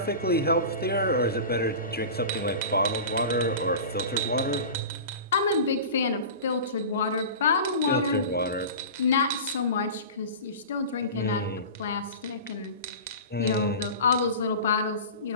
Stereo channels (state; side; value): inverted; both; correlation -0.33